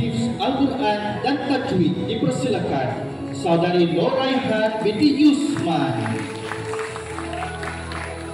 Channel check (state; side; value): identical; both; correlation 1.00